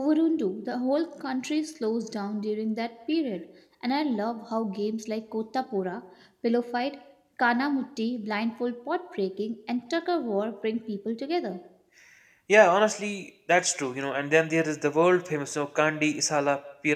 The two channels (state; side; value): identical; both; correlation 1.00